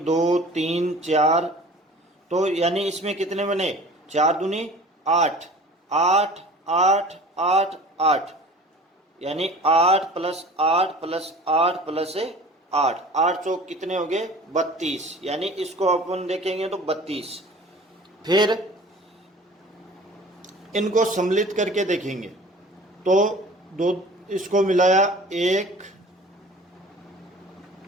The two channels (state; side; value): normal; both; correlation 0.44